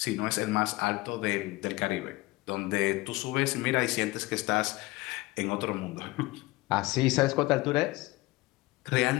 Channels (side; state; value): right; quieter; 20.4 dB